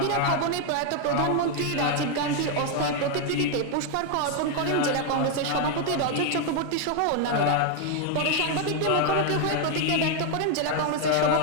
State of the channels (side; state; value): both; different; correlation 0.01